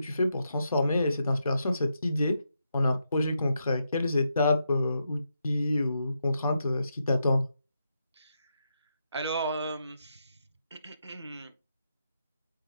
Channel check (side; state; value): both; inverted; correlation -0.83